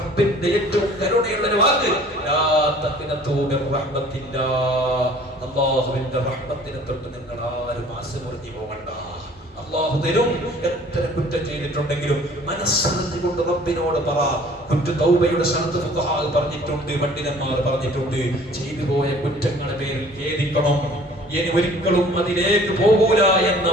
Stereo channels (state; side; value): normal; both; correlation 0.51